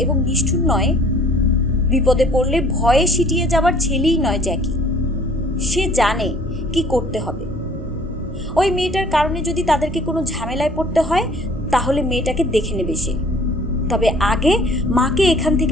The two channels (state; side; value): normal; both; correlation 0.55